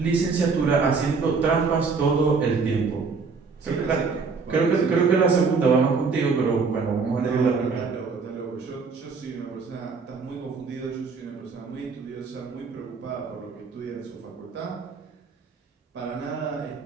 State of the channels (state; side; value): quieter; left; 4.9 dB